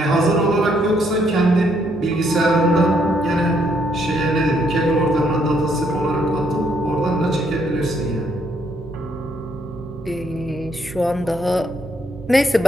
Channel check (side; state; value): both; normal; correlation 0.72